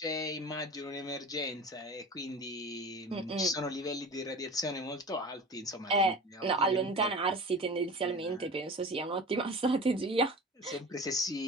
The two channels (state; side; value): normal; both; correlation 0.36